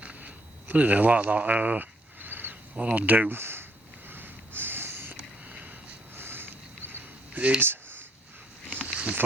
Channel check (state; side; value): normal; both; correlation 0.70